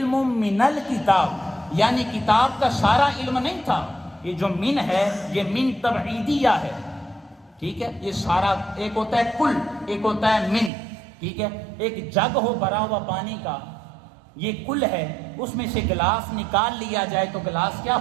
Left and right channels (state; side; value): drops out; left; at 10.7 s